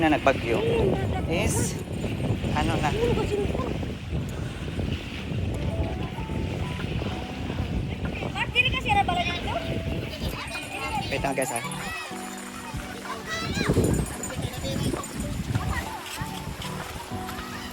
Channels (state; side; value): identical; both; correlation 1.00